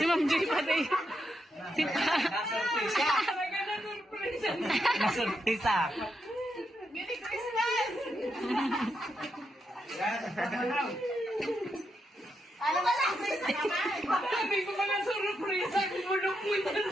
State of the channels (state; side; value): normal; both; correlation 0.83